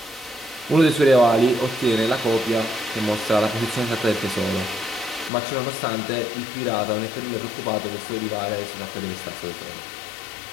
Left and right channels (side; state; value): right; drops out; at 5.3 s